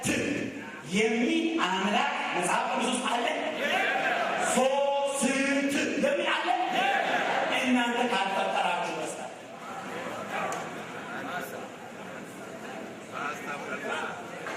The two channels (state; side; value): identical; both; correlation 1.00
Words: የሚል አምላክ መጽሐፍ ቅዱስ ውስጥ አለ። ሶስት የሚል አለ። እናንተ ካልፈጠራችሁ በስተቀር